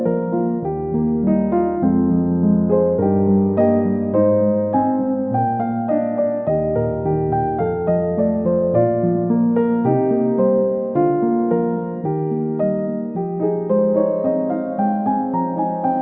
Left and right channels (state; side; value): identical; both; correlation 1.00